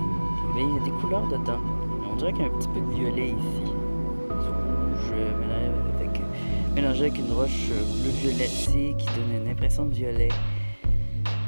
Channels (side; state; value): both; inverted; correlation -1.00